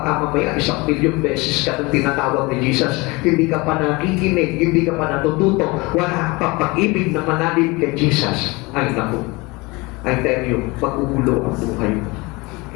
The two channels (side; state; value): right; quieter; 24.7 dB